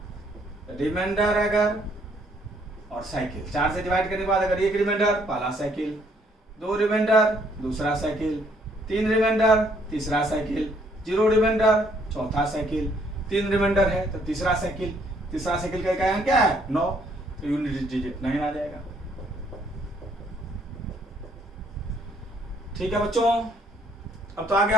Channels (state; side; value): normal; both; correlation 0.67